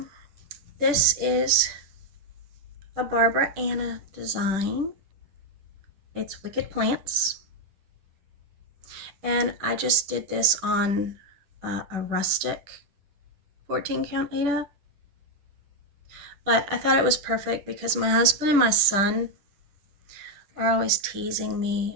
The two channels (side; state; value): left; late; 10 ms